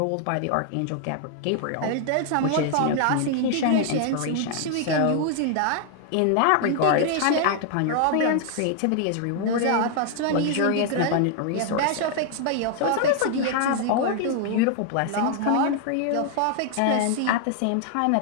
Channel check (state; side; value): different; both; correlation 0.00